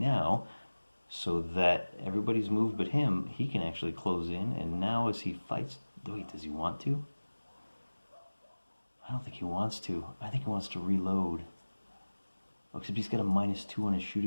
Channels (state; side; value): inverted; both; correlation -1.00